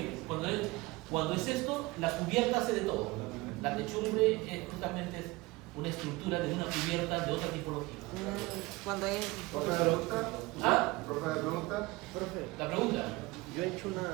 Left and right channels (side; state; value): left; quieter; 22.2 dB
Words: cuando es esto, la cubierta hace de todo. La techumbre es justamente una estructura de una cubierta de otra tipología. Cuando es... ¿Profe de pregunta? ¿Ah? ¿Profe de pregunta? Profe, La pregunta. yo he hecho una